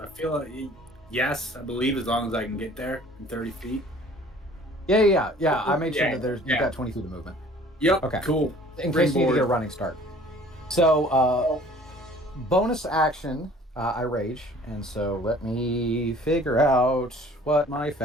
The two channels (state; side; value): normal; both; correlation 0.51